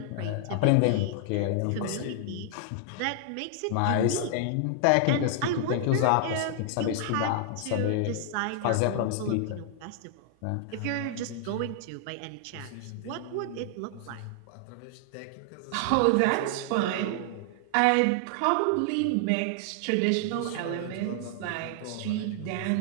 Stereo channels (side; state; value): both; different; correlation 0.00